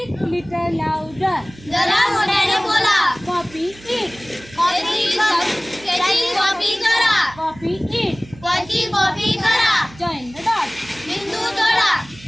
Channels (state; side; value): noise; right; hum, 22 dB below the sound